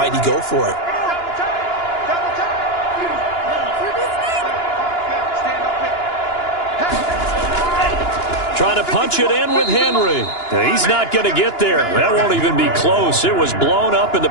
he go for it? Trying to punch it in with Henry. He's not going to get there. That won't even be close. It was blown up in the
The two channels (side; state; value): right; late; 2.9 ms